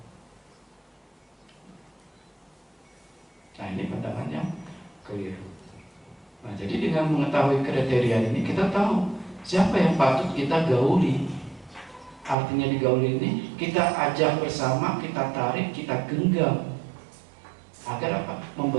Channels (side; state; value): left; drops out; at 12.4 s